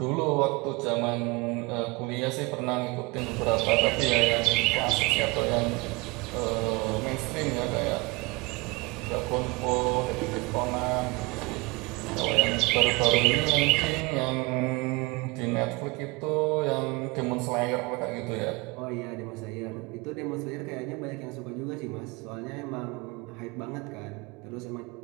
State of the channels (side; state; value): left; quieter; 25.4 dB